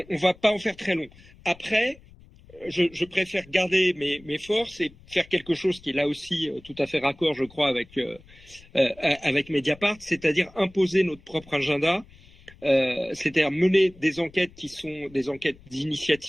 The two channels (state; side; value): noise; left; rumble, 24 dB below the sound